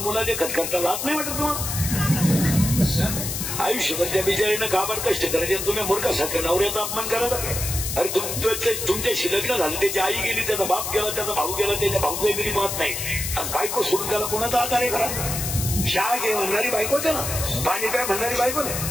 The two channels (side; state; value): left; noise; hiss, 3 dB below the sound